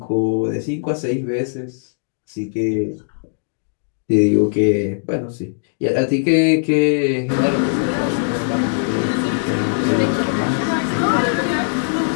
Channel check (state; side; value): silent; right; digital silence